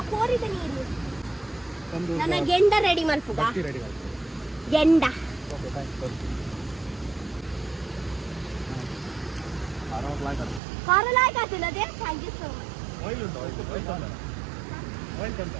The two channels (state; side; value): drops out; left; at 10.6 s